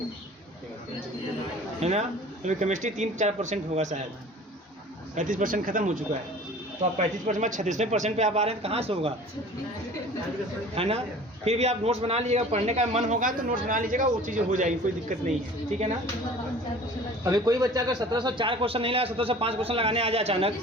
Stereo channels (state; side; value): normal; both; correlation 0.45